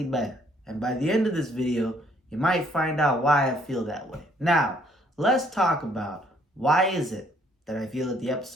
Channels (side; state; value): both; normal; correlation 0.65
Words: better. And by the end of this video, you might find out why I feel that way. Now, let's talk about why is it that I feel that the